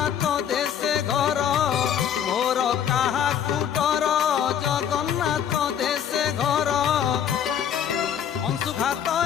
দেশে ঘর মোর কাহাকু ডর জগন্নাথ দেশে ঘর অংশুঘাত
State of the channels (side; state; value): right; quieter; 9.0 dB